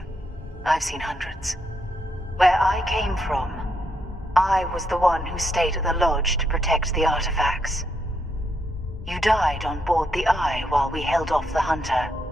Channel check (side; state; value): both; normal; correlation 0.78